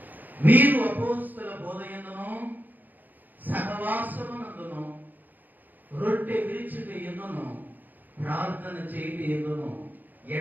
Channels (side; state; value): left; late; 0.085 ms